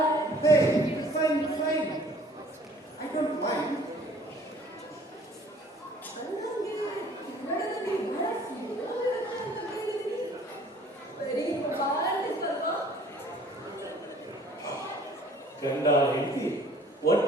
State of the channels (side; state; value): both; normal; correlation 0.54